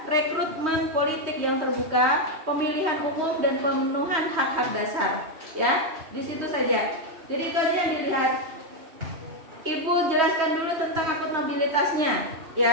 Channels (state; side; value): late; left; 3.1 ms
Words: rekrutmen politik yang terbuka, pemilihan umum, dan pemenuhan hak-hak dasar. Ya, di situ saja. Jadi itu aja yang dilihat. Ibu jelaskan dulu tentang akuntabilitasnya.